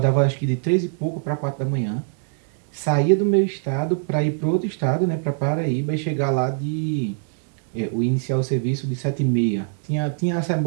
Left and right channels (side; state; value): left; silent; digital silence